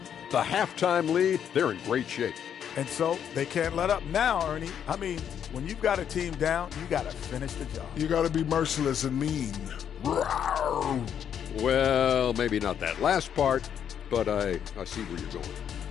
the halftime lead, they're in great shape. And so they can't let up now, Ernie. I mean, when you've got a team down, you got to finish the job. You got to be merciless and mean. Well, maybe not that last part, but I see where you're going.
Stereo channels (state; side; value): quieter; right; 8.7 dB